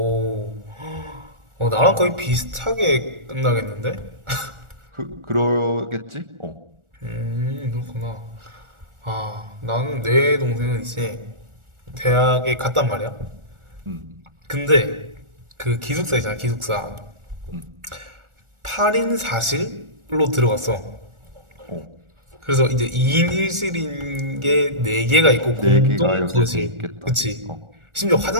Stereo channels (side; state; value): left; late; 1.4 ms